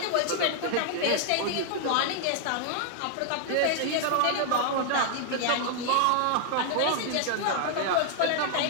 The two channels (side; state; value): both; different; correlation 0.00